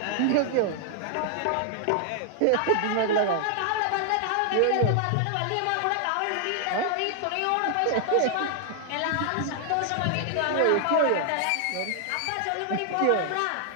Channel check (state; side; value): different; both; correlation 0.00